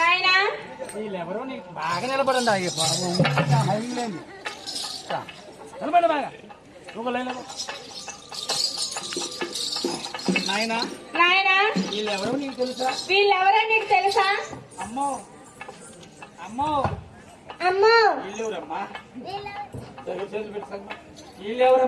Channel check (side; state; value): both; identical; correlation 1.00